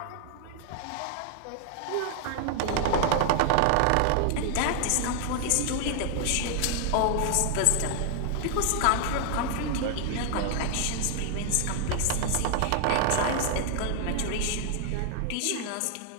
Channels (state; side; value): different; both; correlation 0.00